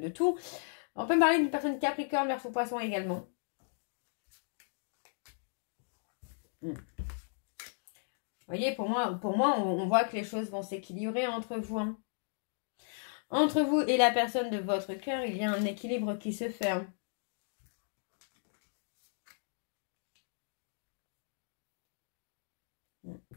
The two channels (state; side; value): silent; right; digital silence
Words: tout. On peut me parler d'une personne Capricorne, Verseau, Poisson également. Vous voyez, pour moi on voit que les choses vont s'équilibrer entre vous. Hein. Entre vous et la personne de votre cœur, il y a un équilibre qui se fait. Hein.